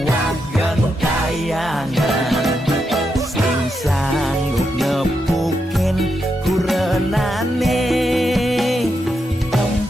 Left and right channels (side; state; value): both; normal; correlation 0.84